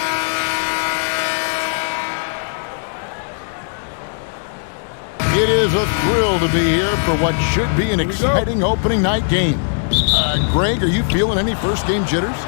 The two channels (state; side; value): silent; right; digital silence